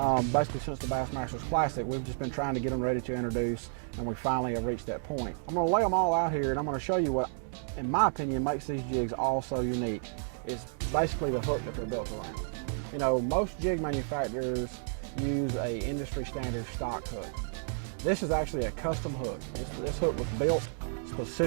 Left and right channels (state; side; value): silent; left; digital silence